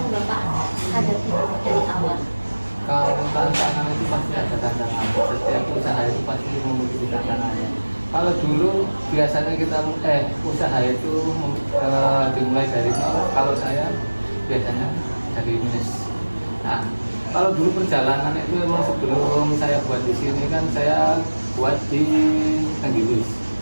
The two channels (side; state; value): both; inverted; correlation -1.00